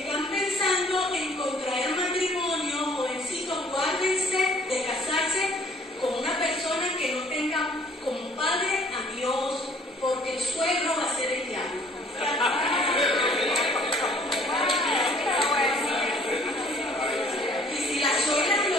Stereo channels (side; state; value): both; normal; correlation 0.58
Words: pensando en contraer matrimonio, jovencitos, guárdense de casarse con una persona que no tenga como padre a Dios, porque el suegro va a ser el diablo. Y si las suegras y